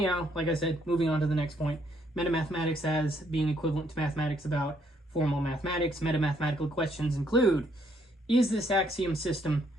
like I said, moving on to the next point, metamathematics as being equivalent to mathematics about formal mathematics. Metamathematical questions include, is this axiom system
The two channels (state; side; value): normal; both; correlation 0.70